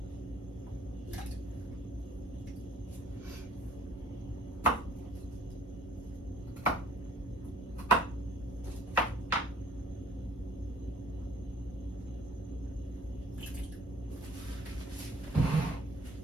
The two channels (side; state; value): both; normal; correlation 0.55